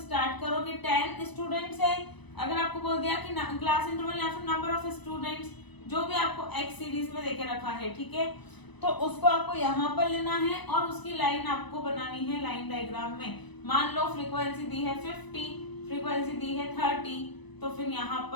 करो कि 10 स्टूडेंट्स है। अगर आपको बोल दिया कि क्लास इंटरवल या फिर नंबर ऑफ स्टूडेंट्स, जो भी आपको एक्स सीरीज में देके रखा है, ठीक है, तो उसको आपको यहाँ पर लेना है और उसकी लाइन आपको बनानी है लाइन डायग्राम में। मान लो फ्रीक्वेंसी दी है 50, फ्रीक्वेंसी दी है 30, तो फिर यहाँ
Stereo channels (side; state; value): right; late; 1.0 ms